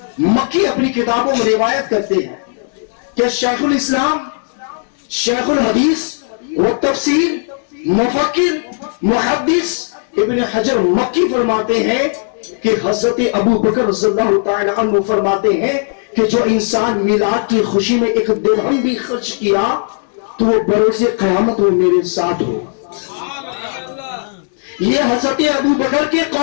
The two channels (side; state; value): right; silent; digital silence